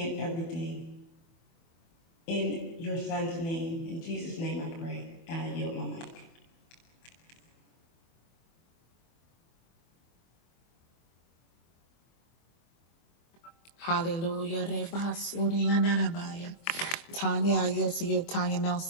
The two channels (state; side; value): late; right; 24 ms